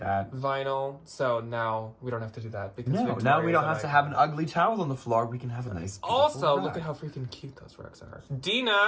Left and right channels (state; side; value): identical; both; correlation 1.00